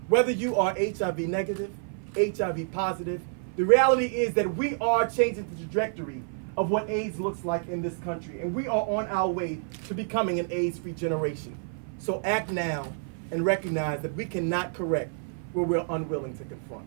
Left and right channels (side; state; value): left; silent; 55 dB below the other